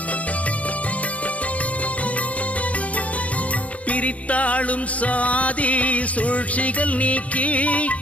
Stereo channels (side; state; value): right; late; 0.067 ms